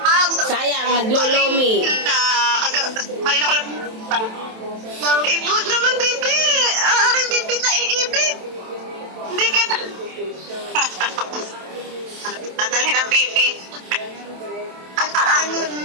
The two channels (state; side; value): late; left; 27 ms